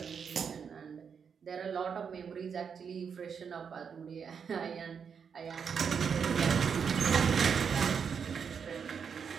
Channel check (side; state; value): left; quieter; 6.7 dB